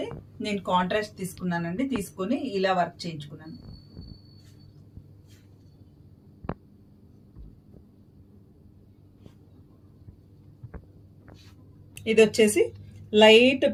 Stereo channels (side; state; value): both; identical; correlation 1.00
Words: నేను కాంట్రాస్ట్ తీసుకున్నానండి. తీసుకొని ఇలా వర్క్ చేయించుకున్నాను. ఇది వచ్చేసి లైట్